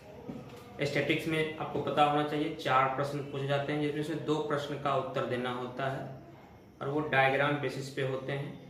स्टैटिक्स में आपको पता होना चाहिए 4 प्रश्न पूछे जाते हैं, जिसमें से 2 प्रश्न का उत्तर देना होता है और वो डायग्राम बेसिस पे होते हैं।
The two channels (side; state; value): both; identical; correlation 1.00